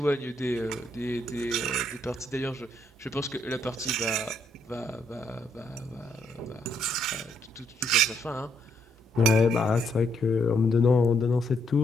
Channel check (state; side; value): normal; both; correlation 0.73